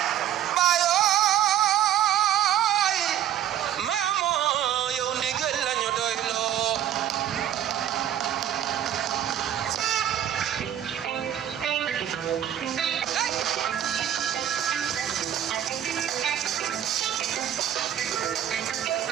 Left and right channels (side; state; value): left; quieter; 10.8 dB